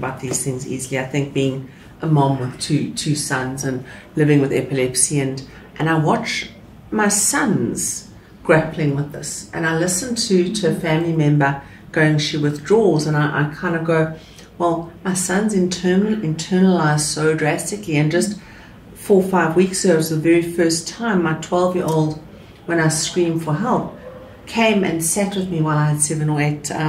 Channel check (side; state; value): both; identical; correlation 1.00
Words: these things easily. I think being a mom with two sons and living with epilepsy, and I watch my sons grappling with this, and I listen to a family member going, she withdraws, and I kind of go, well, my son's internalized so drastically. And just 4 or 5 weeks ago, it was the very first time my 12-year-old, when I screamed for help, came and sat with me while I had 7 or 8